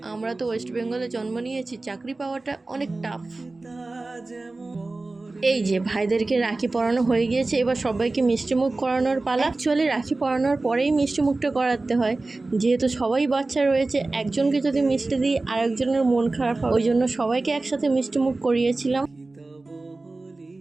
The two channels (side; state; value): left; quieter; 3.2 dB